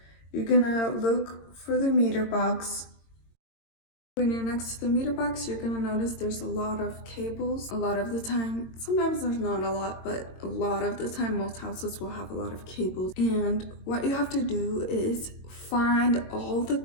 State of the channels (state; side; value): late; right; 22 ms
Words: You're gonna look for the meter box. When you're next to the meter box, you're gonna notice there's a lot of cables. A lot of the time, sometimes there's not a lot, but a lot of the time, most houses will have a lot of cables. And what you have to do is find all the